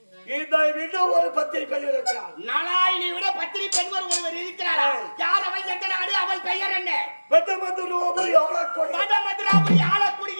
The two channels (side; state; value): both; inverted; correlation -1.00